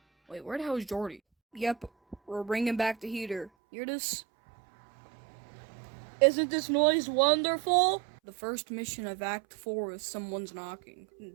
Wait, where the hell is Jordy? Yep, we're bringing back the heater. Hear this? Isn't this noise wonderful? The first mission of Act 4 is Someone's Knocking.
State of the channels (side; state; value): left; drops out; at 3.5 s